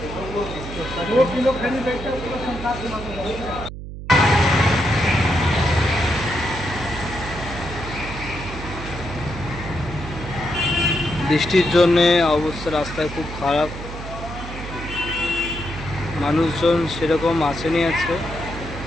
বৃষ্টির জন্যে অবস্থা রাস্তায় খুব খারাপ, মানুষজন সেরকম আসেনি। আছে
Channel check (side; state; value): right; noise; hum, 10 dB below the sound